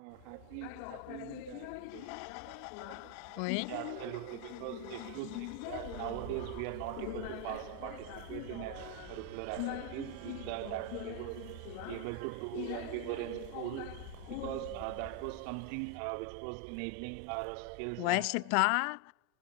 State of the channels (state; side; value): different; both; correlation 0.01